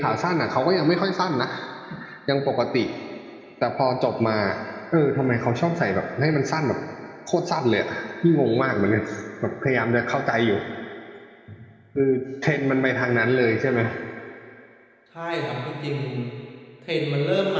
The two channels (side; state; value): both; identical; correlation 1.00